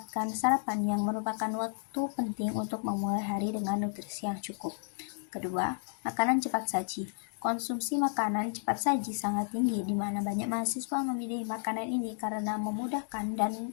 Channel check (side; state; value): right; silent; digital silence